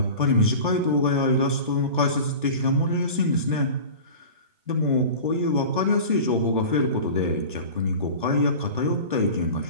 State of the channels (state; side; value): inverted; both; correlation -0.35